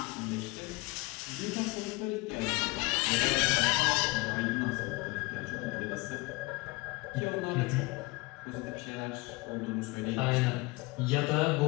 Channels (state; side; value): quieter; right; 24.6 dB